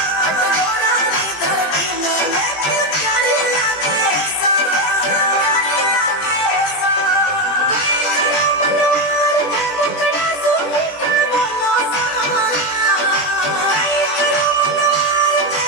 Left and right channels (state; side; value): late; right; 20 ms